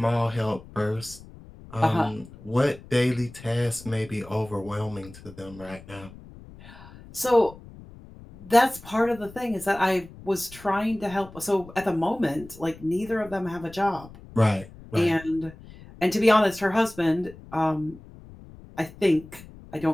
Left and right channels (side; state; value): left; noise; rumble, 19 dB below the sound